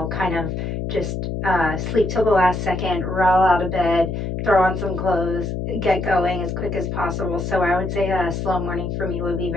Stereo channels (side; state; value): left; noise; hum, 3 dB below the sound